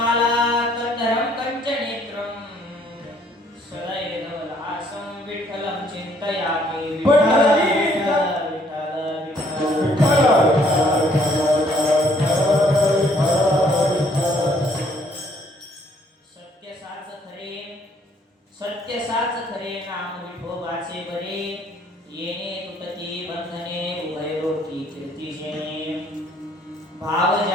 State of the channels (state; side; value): normal; both; correlation 0.64